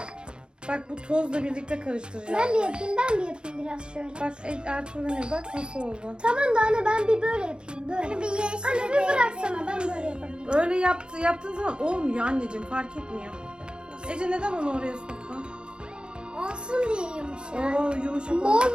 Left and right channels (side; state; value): left; late; 0.051 ms